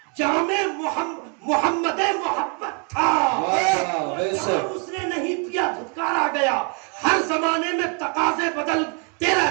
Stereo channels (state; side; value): quieter; left; 38.1 dB